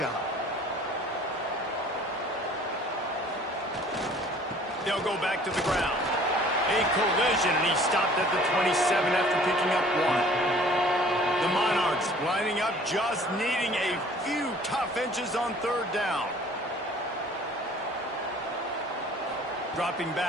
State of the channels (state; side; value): normal; both; correlation 0.52